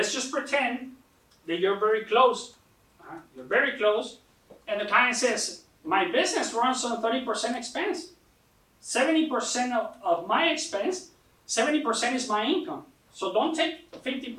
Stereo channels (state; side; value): identical; both; correlation 1.00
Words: just pretend that you're very close. You're very close, and the client says, my business runs on 30% expense. 70% of my expense, 70% is my income. So don't take